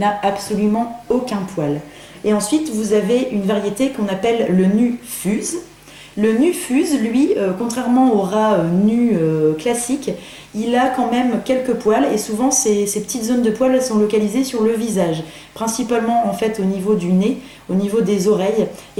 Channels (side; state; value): both; identical; correlation 1.00